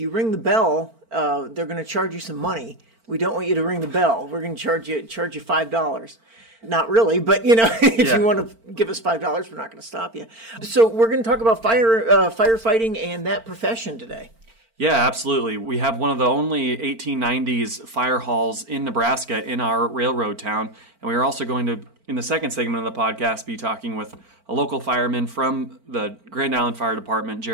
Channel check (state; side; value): late; left; 4.4 ms